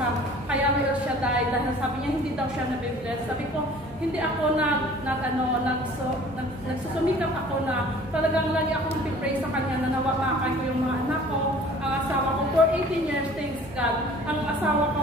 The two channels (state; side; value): normal; both; correlation 0.48